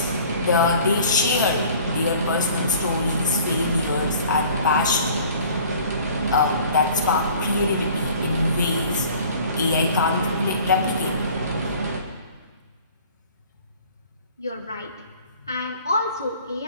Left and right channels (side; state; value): both; inverted; correlation -0.49